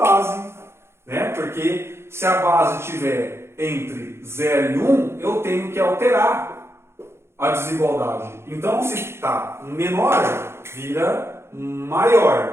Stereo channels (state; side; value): late; left; 0.12 ms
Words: né? Porque se a base estiver entre 0 e 1, eu tenho que alterar a desigualdade. Então, se está menor, vira